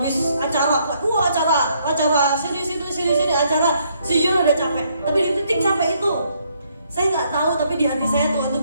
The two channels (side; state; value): both; inverted; correlation -0.71